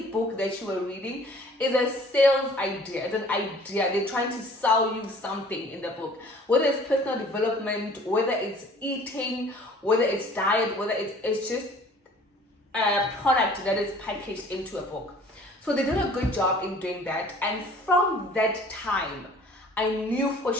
book that you are reading is a sales idea. It's an idea. They're trying to sell you something in the book, whether it's personal development, whether it's eating, whether it's diet, whether it's just a product that is packaged into a book. So they did a good job in doing that, and from that time I knew for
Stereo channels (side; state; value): both; normal; correlation 0.51